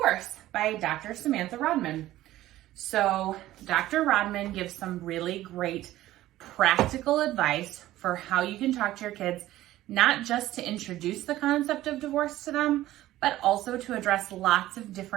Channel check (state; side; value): quieter; left; 15.1 dB